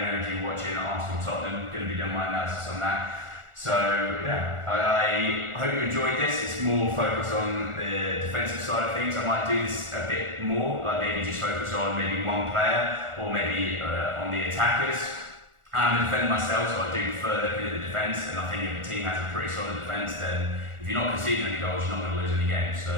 going to be watching Arsenal Tottenham. Going to be doing my analysis on that. So yeah, I hope you enjoyed this. It's more focused on the defensive side of things. I might do this a bit more, like maybe just focus on maybe one player or maybe on the attackers. I'm a defender myself, so I do prefer looking at the defence, and I think if a team has a pretty solid defence, then if you're not conceding any goals, you're not going to lose any games.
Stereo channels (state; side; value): late; left; 1.4 ms